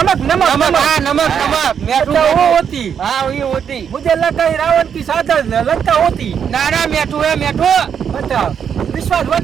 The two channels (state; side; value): quieter; left; 7.7 dB